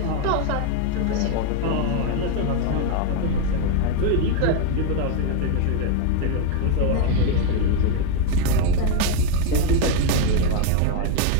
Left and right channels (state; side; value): different; both; correlation 0.01